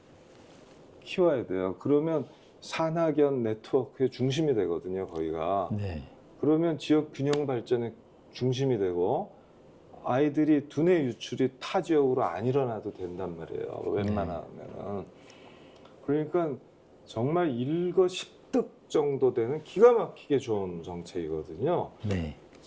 키워야 돼요. 그러면 산학연 네트워크의 중심이 되거든요, 거기가. 네. 그러면 지역 균형 발전의 중심이 되고 아이들이 두뇌 유출이 타 지역으로 안 일어나도 된단 말이에요. 웬만하면은. 그러니까 정말 일거십득 정도 되는 기가 막히게 좋은 정책이거든요. 네.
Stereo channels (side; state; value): both; identical; correlation 1.00